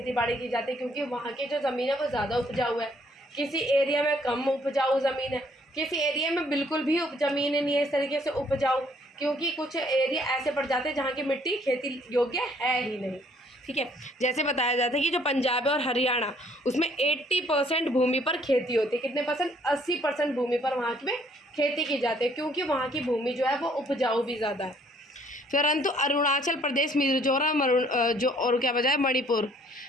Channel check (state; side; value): normal; both; correlation 0.63